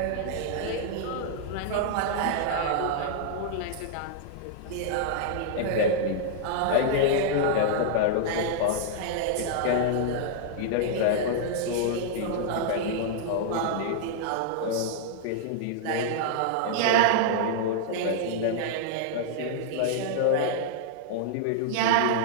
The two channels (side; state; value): both; different; correlation -0.01